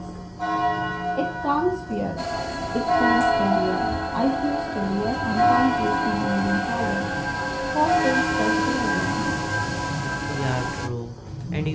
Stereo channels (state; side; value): identical; both; correlation 1.00